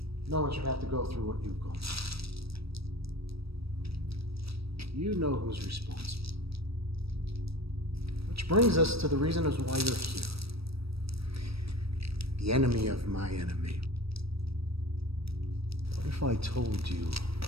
No one should have to go through what you've gone through. You know who's responsible. Which brings us to the reason as why you're here. The enemy of my enemy. What if I told you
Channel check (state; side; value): late; left; 0.77 ms